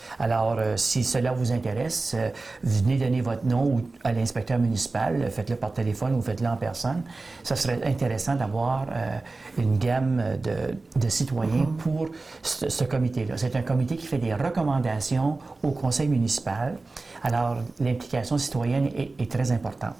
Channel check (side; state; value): left; quieter; 3.5 dB